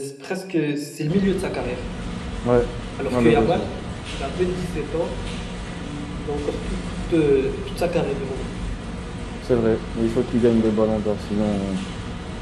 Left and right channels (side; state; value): both; identical; correlation 1.00